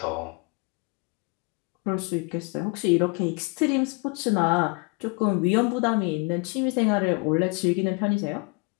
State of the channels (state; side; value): quieter; right; 32.1 dB